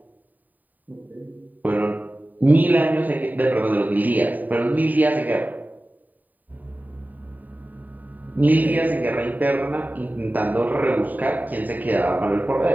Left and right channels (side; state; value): left; late; 0.084 ms